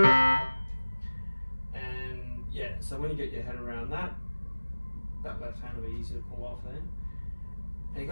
yeah, so when you get your head around that left hand will be easy to pull off there, and you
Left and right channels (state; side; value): inverted; both; correlation -1.00